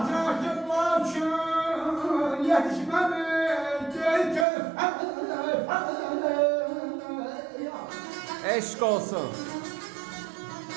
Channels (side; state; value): left; drops out; at 4.5 s